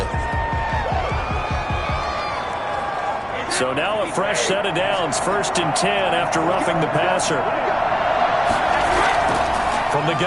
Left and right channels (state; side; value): identical; both; correlation 1.00